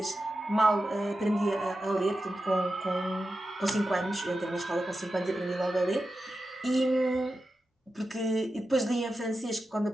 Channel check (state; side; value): normal; both; correlation 0.91